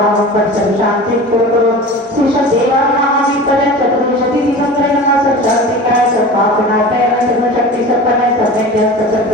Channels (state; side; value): normal; both; correlation 0.35